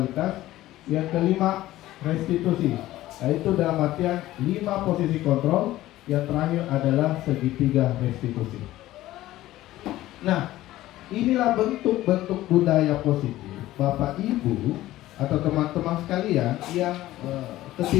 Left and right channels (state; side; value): quieter; right; 15.5 dB